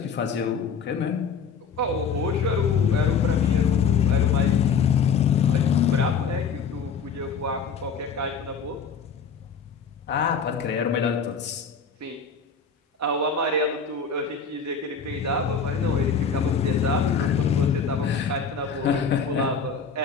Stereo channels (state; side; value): quieter; right; 5.9 dB